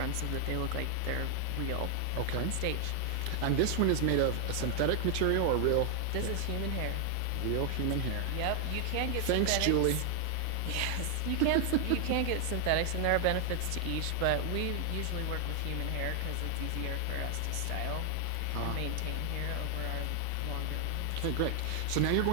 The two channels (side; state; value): both; different; correlation 0.00